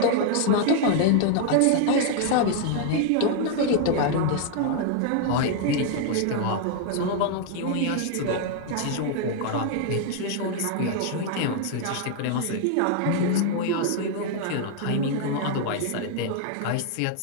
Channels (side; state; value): both; different; correlation 0.00